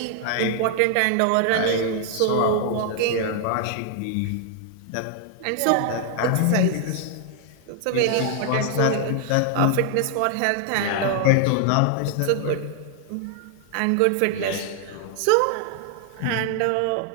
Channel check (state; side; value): different; both; correlation 0.00